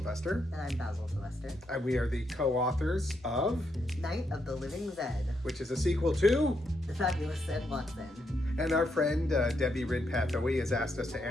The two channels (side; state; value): both; normal; correlation 0.79